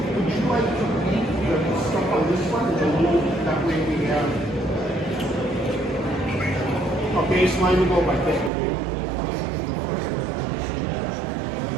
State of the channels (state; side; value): drops out; left; at 8.5 s